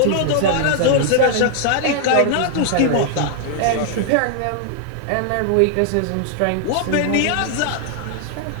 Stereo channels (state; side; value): different; both; correlation 0.00